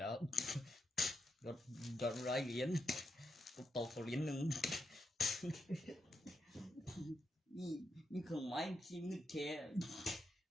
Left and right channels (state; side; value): normal; both; correlation 0.83